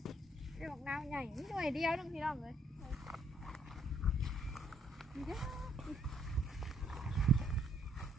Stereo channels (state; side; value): normal; both; correlation 0.69